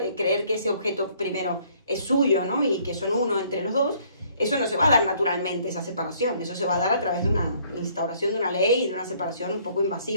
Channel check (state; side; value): inverted; both; correlation -0.62